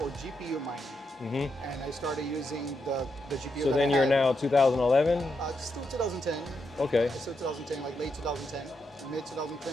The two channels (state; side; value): normal; both; correlation 0.82